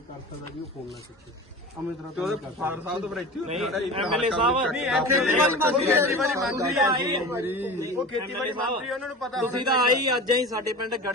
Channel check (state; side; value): normal; both; correlation 0.33